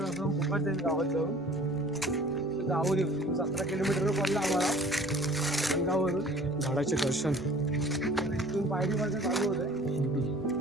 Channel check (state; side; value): normal; both; correlation 0.49